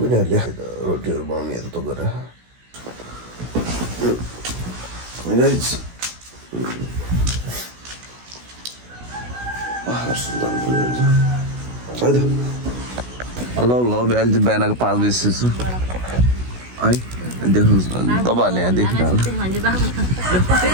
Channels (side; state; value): left; late; 16 ms